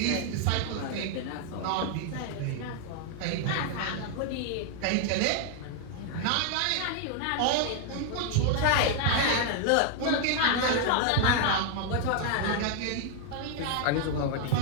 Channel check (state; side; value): different; both; correlation 0.00